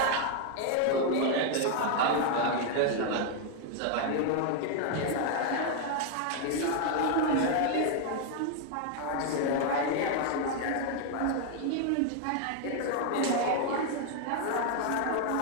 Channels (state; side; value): different; both; correlation 0.00